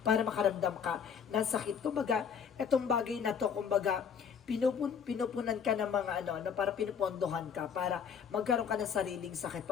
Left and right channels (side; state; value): right; quieter; 7.1 dB